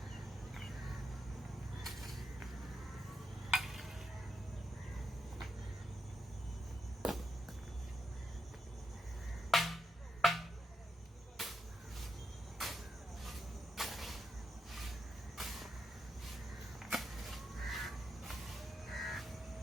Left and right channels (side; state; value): both; normal; correlation 0.84